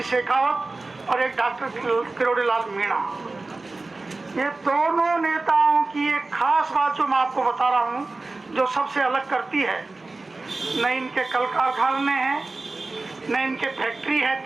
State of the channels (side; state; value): left; quieter; 3.4 dB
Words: शेखावत और एक डॉक्टर किरोड़ीलाल मीणा। ये दोनों नेताओं की एक खास बात जो मैं आपको बता रहा हूं, जो सबसे अलग करती है, न इनके कल कारखाने हैं, न इनके फैक्ट्री है